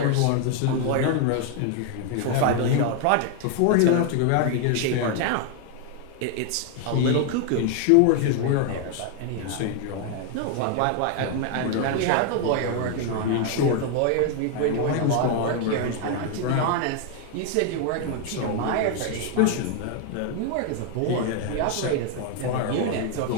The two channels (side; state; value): both; different; correlation 0.00